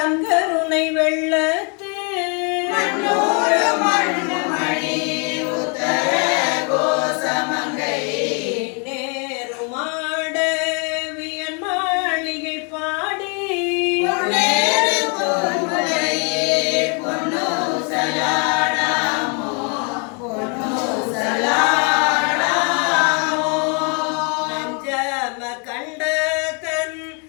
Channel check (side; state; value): right; quieter; 36.4 dB